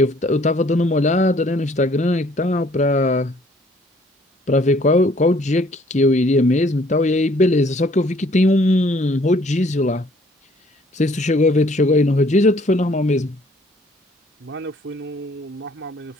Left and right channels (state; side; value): normal; both; correlation 0.60